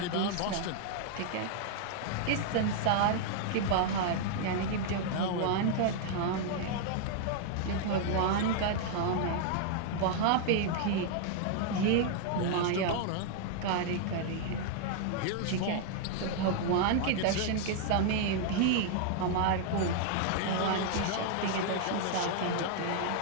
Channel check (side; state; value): both; different; correlation 0.00